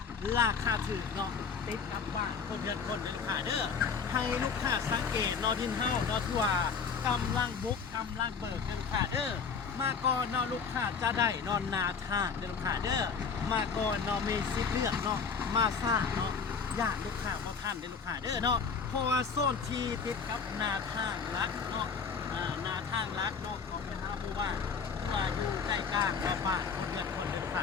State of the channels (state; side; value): quieter; right; 5.7 dB